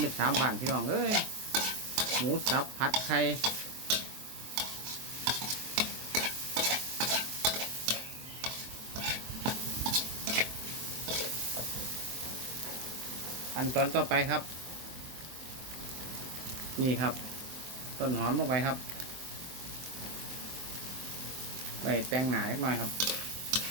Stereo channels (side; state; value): left; late; 23 ms